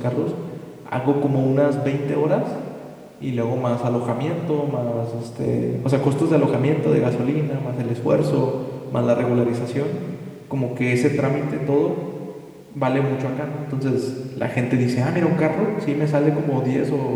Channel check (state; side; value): identical; both; correlation 1.00